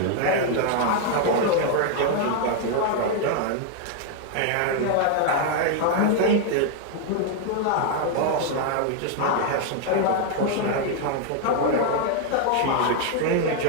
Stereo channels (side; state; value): both; different; correlation 0.00